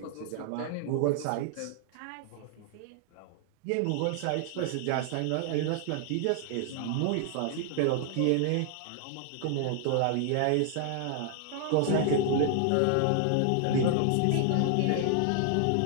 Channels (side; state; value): both; different; correlation 0.00